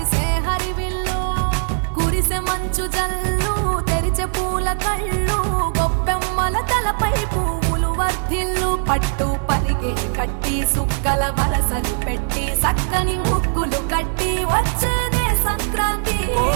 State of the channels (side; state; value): left; silent; digital silence